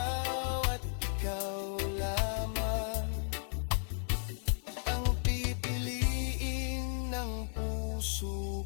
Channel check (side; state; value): right; silent; 55 dB below the other